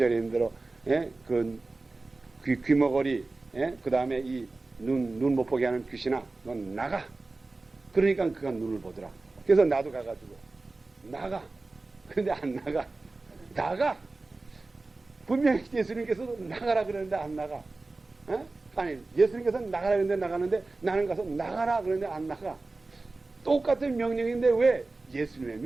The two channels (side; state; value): left; quieter; 3.4 dB